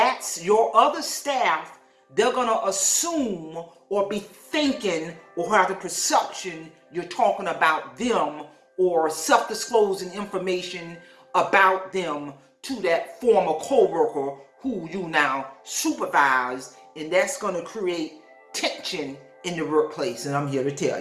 your other staff. They're going to assume or be thinking or have the perception you're talking about them or self-disclosing information about them to that former coworker who you now supervise, and that's going to create tension in the workplace, and I'm here to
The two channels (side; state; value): both; identical; correlation 1.00